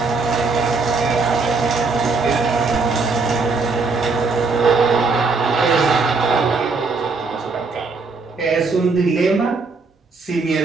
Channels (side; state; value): left; quieter; 4.2 dB